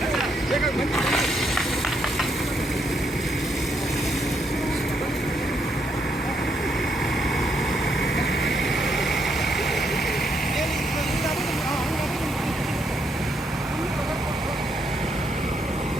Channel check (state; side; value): normal; both; correlation 0.76